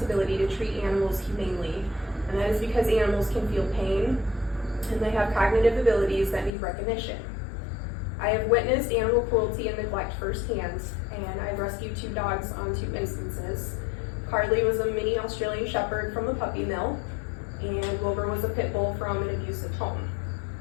to treat animals humanely, and that is because animals can feel pain and they have cognitive abilities that need recognition. I have witnessed animal cruelty and neglect firsthand, and I've rescued 2 dogs on 2 instances. Carly was a mini Australian Shepherd from a puppy mill, and Wilbur was a pit bull from an abusive home.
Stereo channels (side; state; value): right; drops out; at 6.5 s